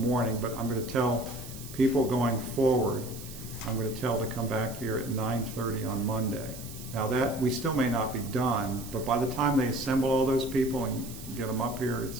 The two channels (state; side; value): noise; right; hiss, 14 dB below the sound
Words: but I'm going to tell people going forward, I'm going to tell to come back here at 9:30 on Monday. Now that, we still may not be done, but by the time they assemble all those people and get them up here,